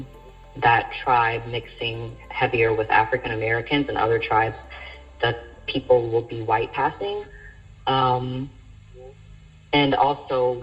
tribe mixing heavier with African Americans, and other tribes that people will be white passing. And also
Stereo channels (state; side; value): identical; both; correlation 1.00